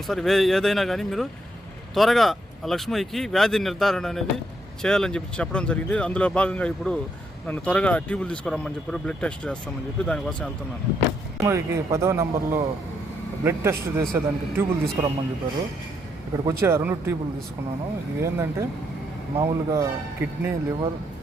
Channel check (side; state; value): both; normal; correlation 0.76